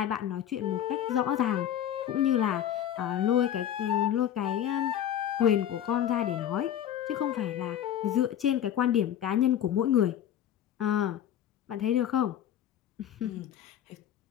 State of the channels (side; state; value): right; quieter; 10.5 dB